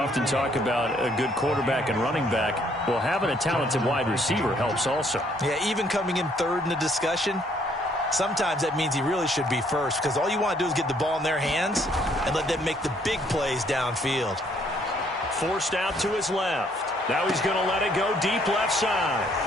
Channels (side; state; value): both; normal; correlation 0.66